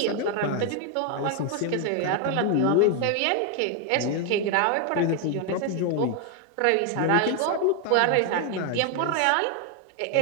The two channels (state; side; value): different; both; correlation 0.01